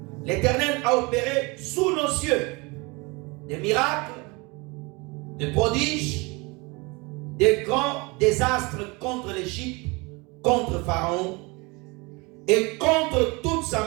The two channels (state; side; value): quieter; left; 26.7 dB